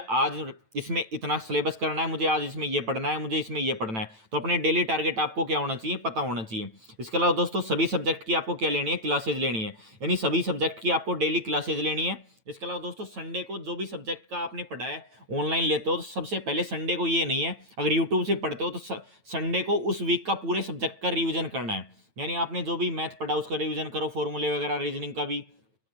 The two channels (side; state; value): left; late; 9.0 ms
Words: आज इसमें इतना सिलेबस करना है, मुझे आज इसमें ये पढ़ना है, मुझे इसमें ये पढ़ना है। तो अपने डेली टारगेट आपको क्या होना चाहिए, पता होना चाहिए। इसके अलावा दोस्तों सभी सब्जेक्ट की आपको क्या लेनी है, क्लासेज लेनी है, यानी सभी सब्जेक्ट की आपको डेली क्लासेज लेनी है। इसके अलावा दोस्तों संडे को जो भी सब्जेक्ट का आपने पढ़ा है ऑनलाइन लेते हो, तो सबसे पहले संडे को ये नहीं है, अगर यूट्यूब से पढ़ते हो तो संडे को उस वीक का पूरे सब्जेक्ट का रिवीजन करना है। यानी आपने जो भी मैथ पढ़ा उसका रिवीजन करो, फॉर्मूले वगैरह, रीजनिंग का भी।